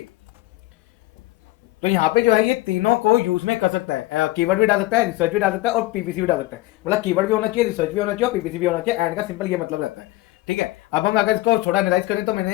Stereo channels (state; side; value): quieter; right; 18.1 dB